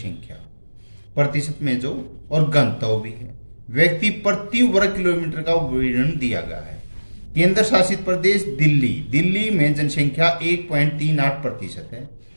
प्रतिशत में जो और गणतव्य भी है, व्यक्ति प्रति वर्ग किलोमीटर का विवरण दिया गया है। केंद्र शासित प्रदेश दिल्ली में जनसंख्या 1.38% है।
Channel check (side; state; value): both; inverted; correlation -1.00